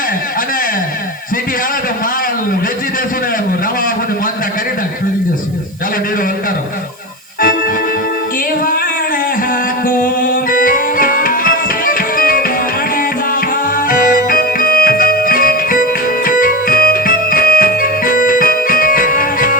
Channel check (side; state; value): right; noise; hiss, 27 dB below the sound